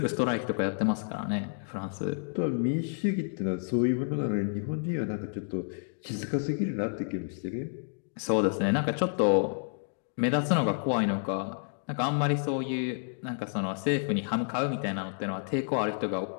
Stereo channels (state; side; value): silent; right; digital silence